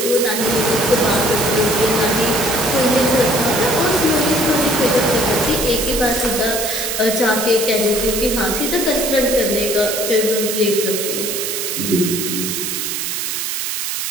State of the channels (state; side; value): noise; right; hiss, 2 dB below the sound